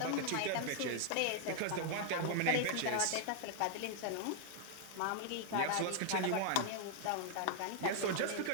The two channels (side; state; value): both; different; correlation 0.00